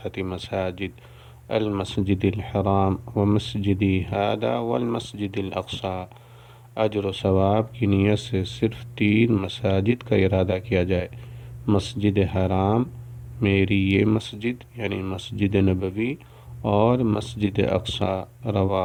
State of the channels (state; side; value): identical; both; correlation 1.00